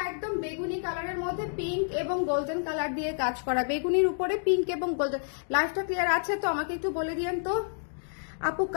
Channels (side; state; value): right; silent; digital silence